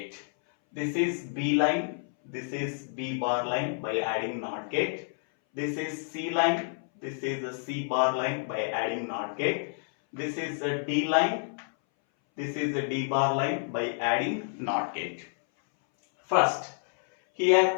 This is B line, this is B bar line by adding NOT gate. This is C line, this is a C bar line by adding NOT gate. This is a D line, this is a D bar line by adding NOT gate. First,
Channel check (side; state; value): right; silent; 59 dB below the other